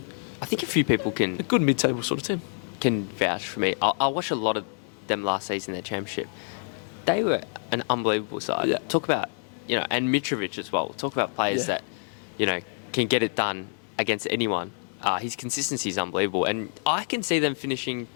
I think a few people a can good mid-table sort of team? vouch for me. I watched a lot of them last season, their championship. They were an unbelievable side. Yeah. Talk about, and Mitrovic as well. Talk about players Yeah. that, can get it done against anyone. His consistency is unbelievable. And I can see them finishing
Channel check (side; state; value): right; silent; digital silence